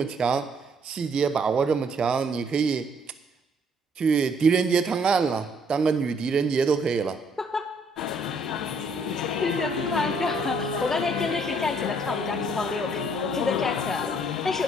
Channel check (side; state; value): both; normal; correlation 0.66